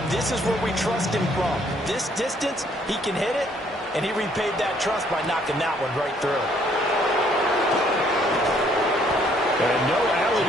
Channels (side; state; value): both; normal; correlation 0.65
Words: this is where we trust him from. This distance, he can hit it. And he repaid that trust by knocking that one right through. And no alley